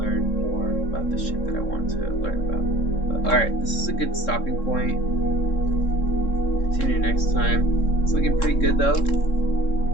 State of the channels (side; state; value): right; late; 3.7 ms